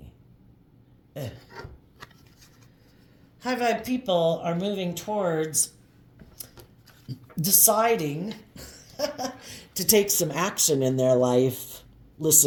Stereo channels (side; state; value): both; identical; correlation 1.00